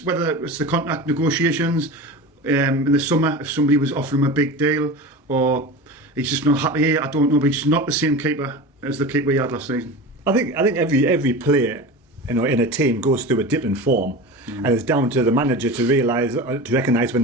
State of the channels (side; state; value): both; normal; correlation 0.30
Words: whether it's the contract negotiations in the summer. If somebody was offering him a big deal, or he's just not happy here, I don't know. But he's not the same keeper as the keeper he had last season. I think every player, in a team goes through a dip in form, and it's down to the manager to recognise when